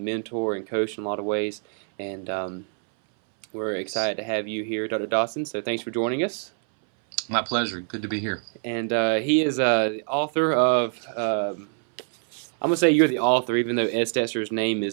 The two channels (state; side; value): silent; left; 62 dB below the other